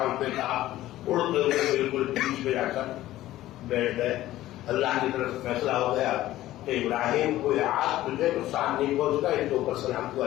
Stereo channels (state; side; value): quieter; right; 15.0 dB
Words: پہ کہا، اڑتے ہوئے بالکل بیچ میں جا کر بیٹھ گئے، اللہ کی طرف سے فیصلہ ہو گیا کہ ابراہیم کو آج تجھے نقصان نہیں پہنچتا، ان کے اوپر سلام کو